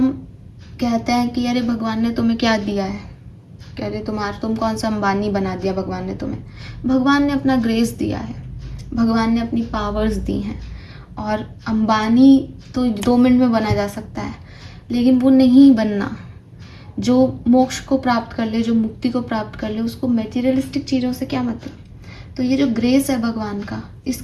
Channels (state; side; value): identical; both; correlation 1.00